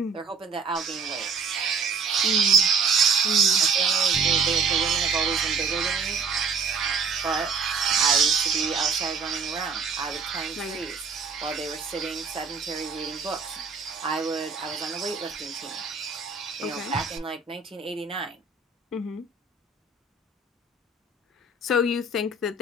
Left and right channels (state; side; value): quieter; left; 4.8 dB